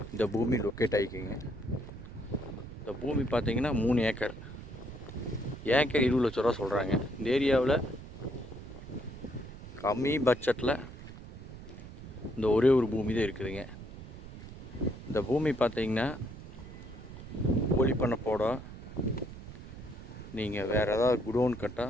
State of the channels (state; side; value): noise; right; rumble, 14 dB below the sound